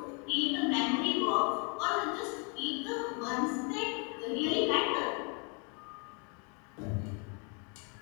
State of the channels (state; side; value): quieter; right; 35.9 dB